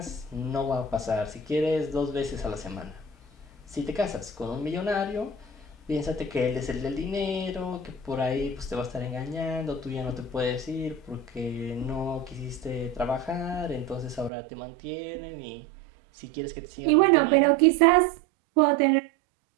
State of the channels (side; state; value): left; drops out; at 14.3 s